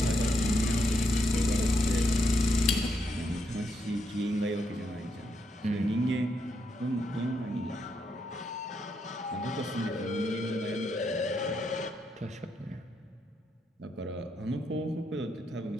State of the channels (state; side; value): normal; both; correlation 0.79